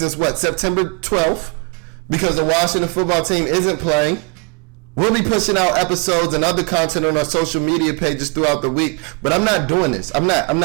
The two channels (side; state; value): left; quieter; 31.0 dB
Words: September 12th, because the Washington football team isn't playing. We'll be pushing out episodes and other content on our social media pages throughout the week, but I'm not doing this. I'm not.